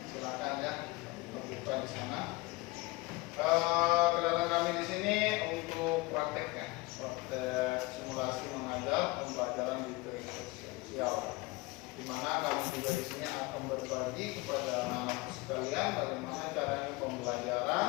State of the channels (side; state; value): right; quieter; 22.5 dB